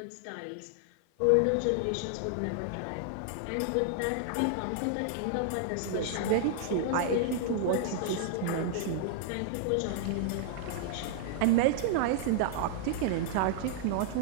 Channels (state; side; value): different; both; correlation -0.01